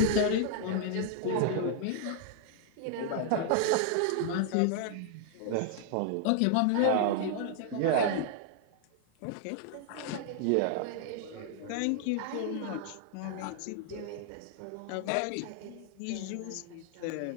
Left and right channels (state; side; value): different; both; correlation -0.01